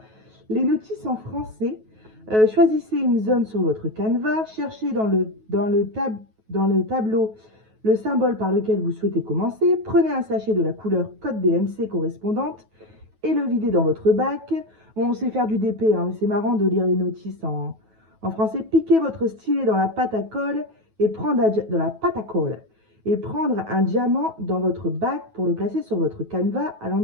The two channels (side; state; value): left; late; 9.3 ms